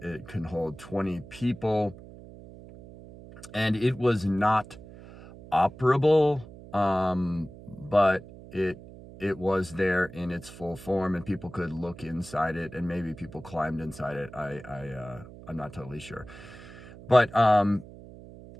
It can hold 20 people, and it was not operable, but it was there in its full form, and people could look inside it, and maybe people climbed inside it. I'm not totally sure, but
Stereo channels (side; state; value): right; noise; hum, 17 dB below the sound